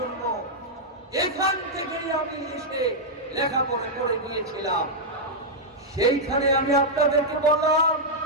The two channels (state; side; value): normal; both; correlation -0.06